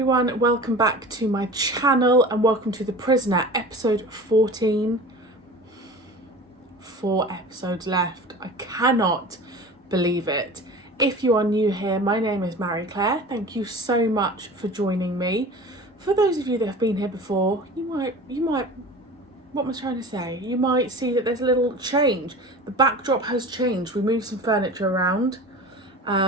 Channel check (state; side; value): normal; both; correlation 0.37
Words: welcome back to my channel and welcome to The Prisoner, episode 14. 4 episodes left. I cannot believe it. If you are new here, my name is Marie-Clare. Thank you so much for joining me. For those of you that have been here before, you might, what am I trying to say? You might see that there's a little change. The backdrop has changed. We moved some furniture around.